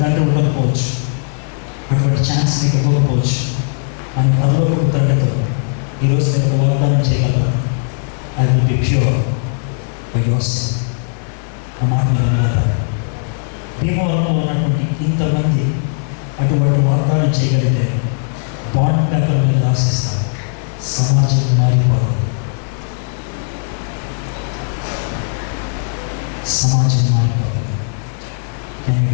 తండ్రి ఉండకపోవచ్చు, అటువంటి ఛాన్స్ మీకు ఇవ్వకపోవచ్చు. అని పరలోకపు తండ్రితో ఈరోజు నేను వాగ్దానం చేయగలను. I will be pure by your self. ఆ మాట మీద భీమవరంలో ఉన్నటువంటి ఇంతమంది అటువంటి వాగ్దానం చేయగలిగితే బాండ్ పేపర్ మీద రాసిస్తారు. సమాజం మారిపోతుంది. Can you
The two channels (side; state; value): right; silent; digital silence